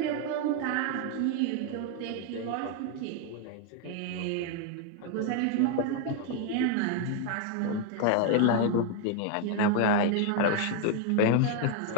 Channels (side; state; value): both; different; correlation 0.01